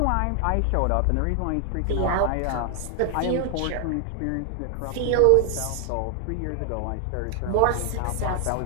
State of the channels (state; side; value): different; both; correlation 0.00